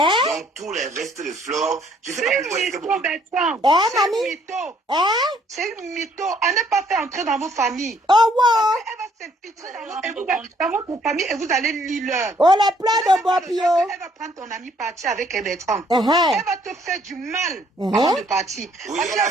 tous les restes de Flore, je sais pas pourquoi elle est C'est une mytho. Elle n'est pas fait entrer dans vos familles. Oh, wow. Elle va s'infiltrer dans votre famille et vous allez lire. Oh, les plans de Bopio. Elle va prendre ton ami partir avec Bertrand. Elle va te faire du mal avant de partir. Oui, elle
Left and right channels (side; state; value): both; normal; correlation 0.64